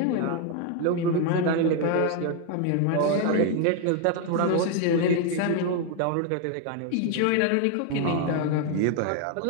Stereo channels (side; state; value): both; different; correlation 0.01